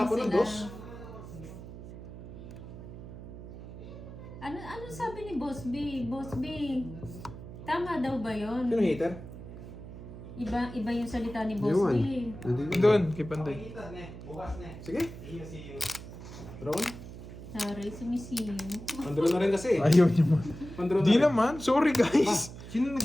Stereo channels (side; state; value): right; noise; hum, 13 dB below the sound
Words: ng sila. dos? Ano sabi ni Boss B? Boss B, tama daw ba yon? Sino hater? Iba yung salita ni Boss B. Doon, kay Pandoy. Sige. Ron? Sorry, sumisiyo. Pandro na rin kasi. Ayaw niyo mo. Pandro na Di rin. naman. Sorry guys. Sino